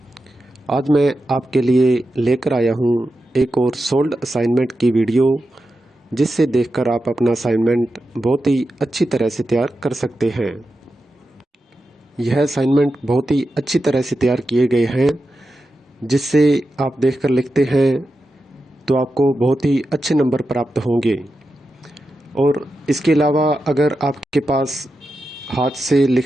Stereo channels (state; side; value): normal; both; correlation 0.90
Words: आज मैं आपके लिए लेकर आया हूँ एक और सोल्ड असाइनमेंट की वीडियो, जिससे देखकर आप अपना असाइनमेंट बहुत ही अच्छी तरह से तैयार कर सकते हैं। यह असाइनमेंट बहुत ही अच्छी तरह से तैयार किए गए हैं, जिससे आप देखकर लिखते हैं तो आपको बहुत ही अच्छे नंबर प्राप्त होंगे। और इसके अलावा अगर आपके पास हाथ से